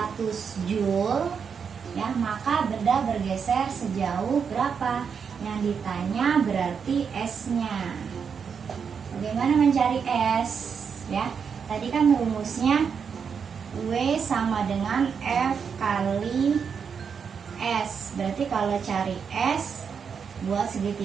Joule ya, maka benda bergeser sejauh berapa? Yang ditanya berarti S-nya. Bagaimana mencari S ya? Tadi kan rumusnya W sama dengan F kali S. Berarti kalau cari S buat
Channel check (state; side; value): quieter; left; 6.5 dB